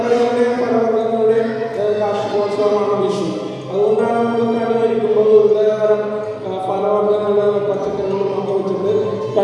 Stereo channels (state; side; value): identical; both; correlation 1.00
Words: ഫലവർഗ്ഗങ്ങളുടെയും കാർഷികോത്സവമാണ് വിഷു. അതുകൊണ്ടാണ് നമ്മൾ കണി ഒരുക്കുമ്പോൾ വിവിധതരം ഫലവർഗ്ഗങ്ങളും പച്ചക്കറികളും ഒക്കെ വെച്ചിട്ട്